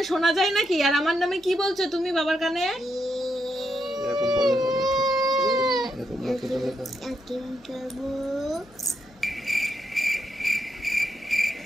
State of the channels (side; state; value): left; noise; hum, 28 dB below the sound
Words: শোনা যায় নাকি? আর আমার নামে কি বলছো তুমি বাবার কানে? এরকম বলে না। এরকম না তো বলে না। আইসক্রিম খাবো।